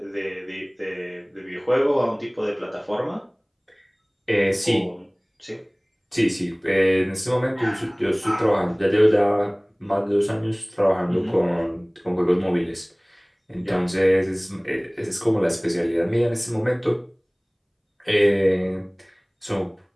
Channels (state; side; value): identical; both; correlation 1.00